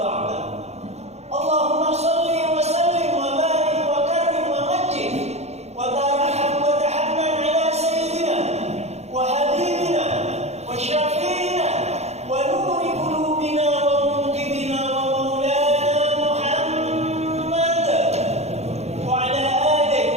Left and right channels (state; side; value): late; left; 0.31 ms